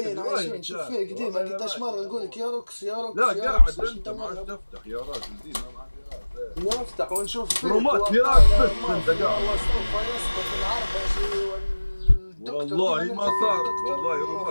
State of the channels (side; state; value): both; inverted; correlation -1.00